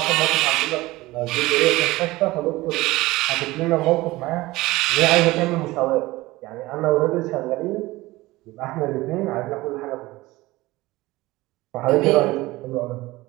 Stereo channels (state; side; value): quieter; left; 19.4 dB